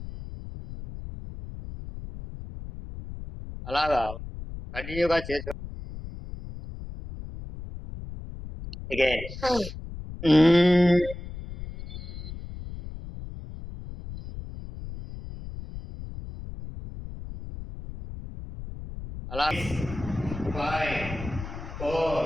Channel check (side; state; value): left; noise; rumble, 11 dB below the sound